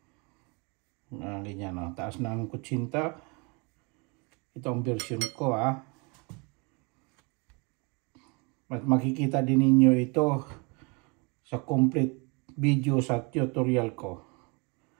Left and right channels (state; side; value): quieter; left; 30.5 dB